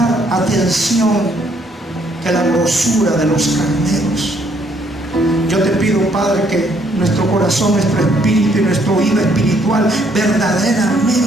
atención que la grosura de los carneros. Yo te pido, Padre, que nuestro corazón, nuestro espíritu y nuestro oído espiritual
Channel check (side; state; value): both; normal; correlation 0.68